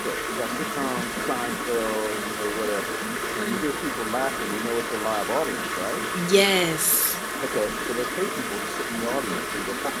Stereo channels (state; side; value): identical; both; correlation 1.00